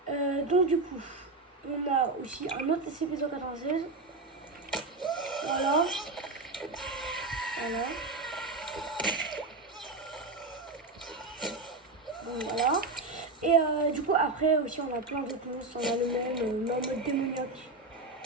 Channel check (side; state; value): left; quieter; 3.4 dB